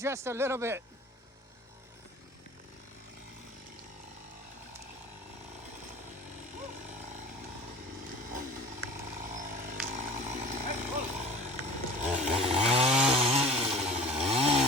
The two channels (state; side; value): normal; both; correlation 0.42